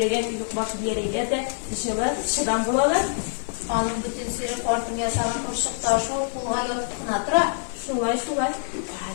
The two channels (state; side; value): silent; right; 62 dB below the other